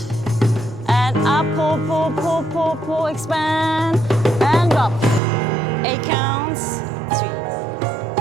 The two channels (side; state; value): left; drops out; at 5.2 s